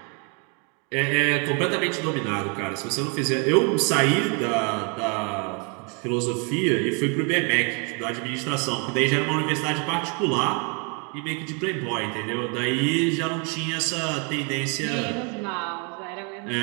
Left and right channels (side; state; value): left; quieter; 36.0 dB